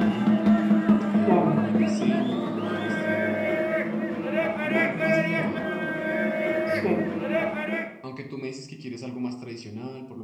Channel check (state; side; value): identical; both; correlation 1.00